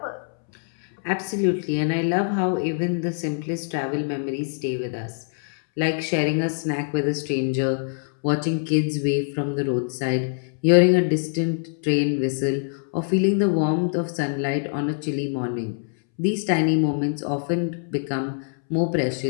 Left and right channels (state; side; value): silent; right; 63 dB below the other